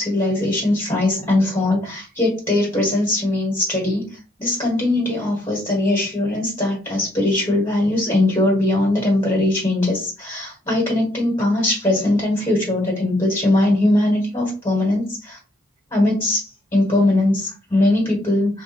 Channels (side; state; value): both; normal; correlation 0.71